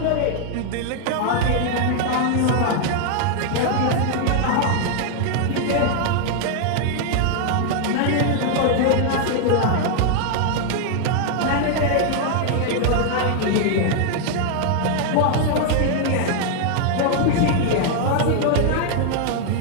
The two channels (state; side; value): different; both; correlation 0.00